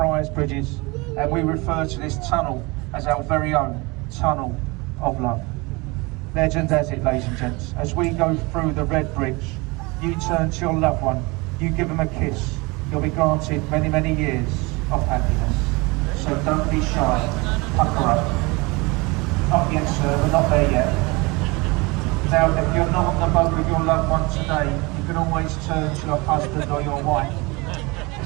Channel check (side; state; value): left; quieter; 25.6 dB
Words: Bridges, and we refer to this tunnel as our very own Tunnel of Love. Legend has it, ladies and gents, as we go through the Red Bridge, you turn to your loved one, you give them a kiss, you'll be granted many, many years of happiness. So don't be shy, pucker up. Not yet, sir, we're not there yet. Now, if you're not on the boat with your loved one today, you can always turn to your husband or your wife.